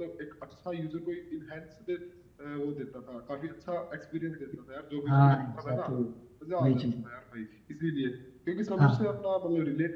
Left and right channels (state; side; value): identical; both; correlation 1.00